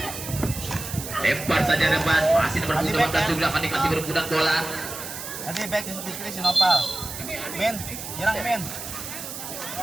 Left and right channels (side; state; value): right; noise; hiss, 9 dB below the sound